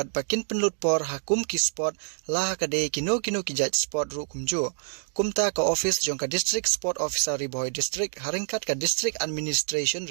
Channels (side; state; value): left; silent; digital silence